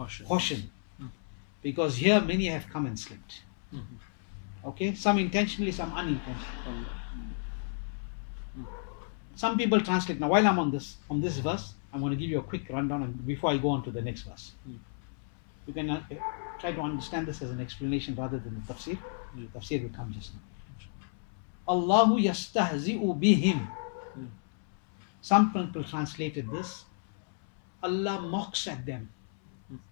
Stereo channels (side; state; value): right; silent; 56 dB below the other